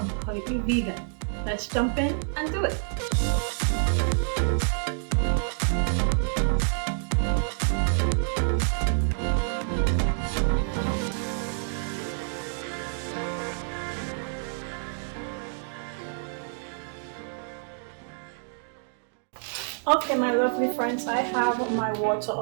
vegan. Let's jump in and do it. Okay, my lovely friends, I have my water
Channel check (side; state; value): left; silent; 57 dB below the other